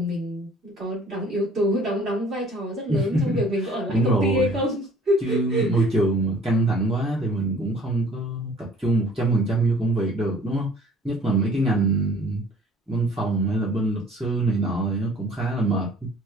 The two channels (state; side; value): normal; both; correlation 0.53